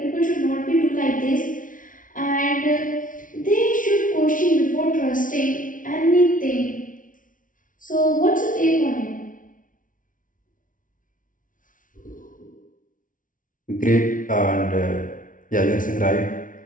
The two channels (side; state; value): right; late; 0.38 ms